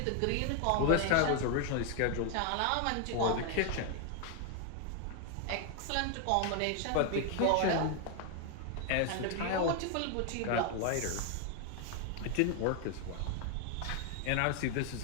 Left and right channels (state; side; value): different; both; correlation 0.00